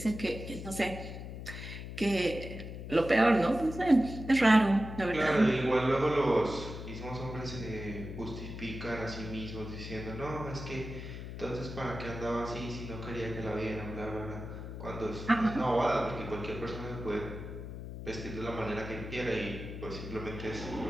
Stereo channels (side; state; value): left; noise; hum, 9 dB below the sound